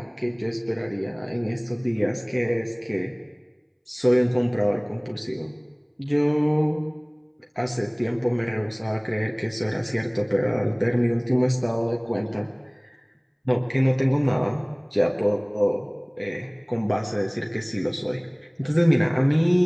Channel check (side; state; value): both; identical; correlation 1.00